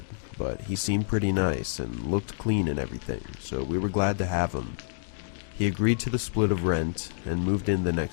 but he seemed pretty nice and looked clean and everything, so we were glad to have him. He agreed to the split of rent and moved in the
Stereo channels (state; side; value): silent; right; digital silence